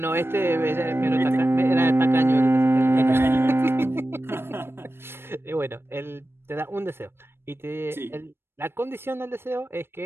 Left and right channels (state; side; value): late; left; 0.11 ms